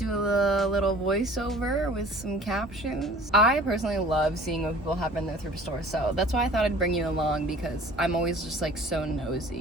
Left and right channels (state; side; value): normal; both; correlation 0.48